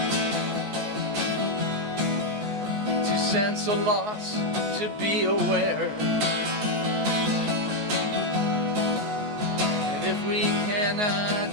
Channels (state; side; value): late; left; 14 ms